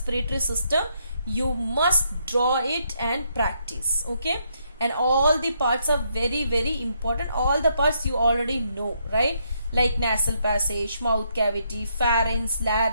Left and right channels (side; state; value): both; inverted; correlation -0.75